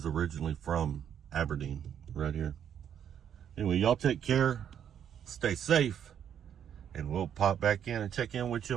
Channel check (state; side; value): quieter; left; 9.1 dB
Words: originally from Aberdeen, right here. Anyway, y'all take care, stay safe, and we'll pop back in and check in with you